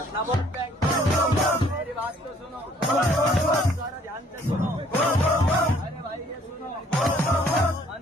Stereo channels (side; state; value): both; normal; correlation 0.61